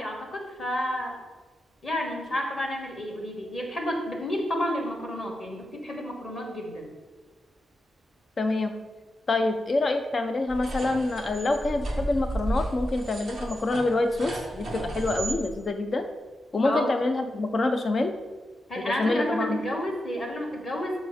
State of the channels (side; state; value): both; normal; correlation 0.89